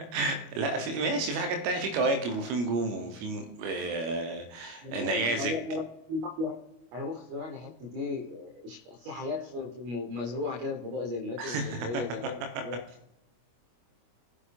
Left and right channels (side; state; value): left; late; 25 ms